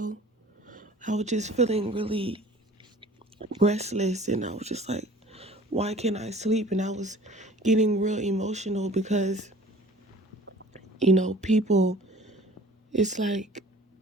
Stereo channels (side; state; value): both; normal; correlation 0.48